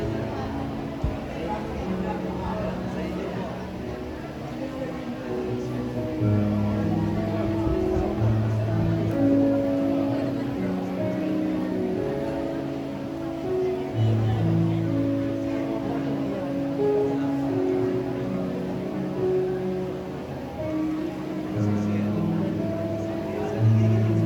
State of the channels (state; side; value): identical; both; correlation 1.00